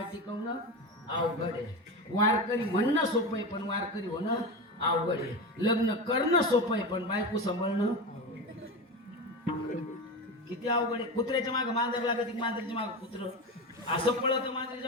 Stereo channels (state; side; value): normal; both; correlation 0.22